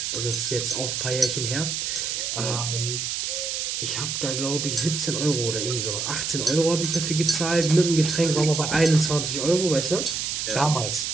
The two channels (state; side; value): noise; right; hiss, 2 dB below the sound